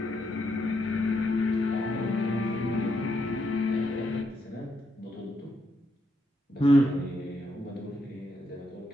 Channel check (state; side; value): normal; both; correlation 0.79